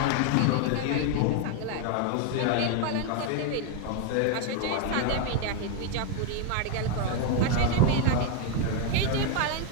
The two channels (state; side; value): different; both; correlation 0.01